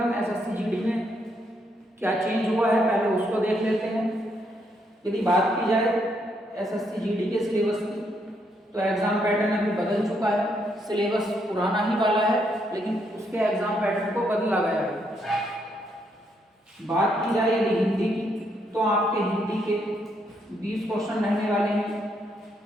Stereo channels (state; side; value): normal; both; correlation 0.75